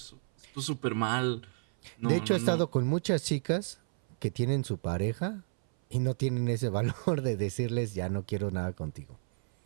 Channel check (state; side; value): silent; left; 57 dB below the other